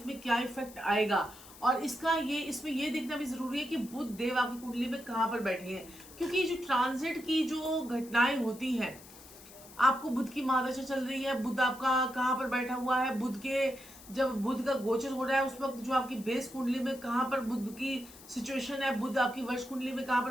में क्या इफेक्ट आएगा, और इसमें ये देखना भी जरूरी है कि बुध देव आपकी कुंडली में कहाँ पर बैठे हैं। क्योंकि जो ट्रांजिट की जो घटनाएं होती हैं, आपको बुध की महादशा चल रही है, बुध आपका कहाँ पर बैठा हुआ है, जब बुध का गोचर हो रहा है उस वक्त जो आपकी बेस कुंडली में कहाँ पर बुध की सिचुएशन है, बुध आपकी वर्ष कुंडली में कहाँ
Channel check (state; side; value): noise; left; hiss, 19 dB below the sound